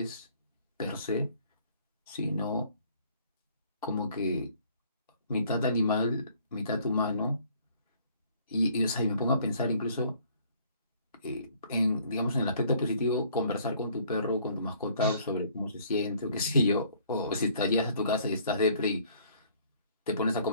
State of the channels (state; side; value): inverted; both; correlation -0.59